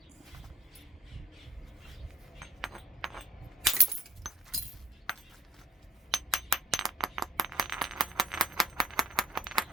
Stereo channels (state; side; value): normal; both; correlation 0.53